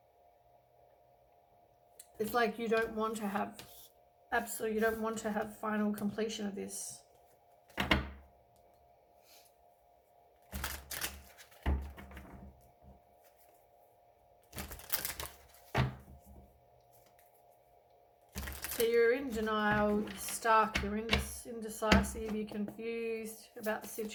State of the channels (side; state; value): both; identical; correlation 1.00